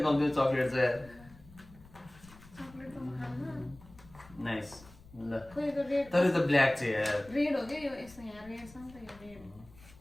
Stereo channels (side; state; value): left; noise; rumble, 22 dB below the sound